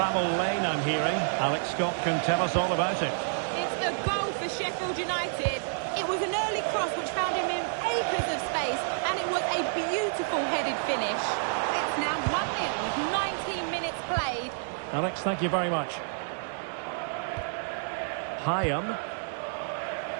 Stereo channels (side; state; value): left; silent; digital silence